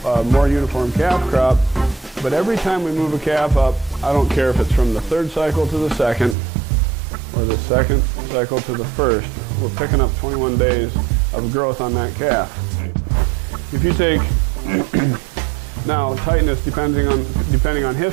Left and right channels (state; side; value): drops out; left; at 6.4 s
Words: more uniform calf crop, but every time we move a calf up, I don't care if it's from the third cycle to the second or the second cycle to the first, we're picking up 21 days of growth on that calf. If you take now tightness, depending on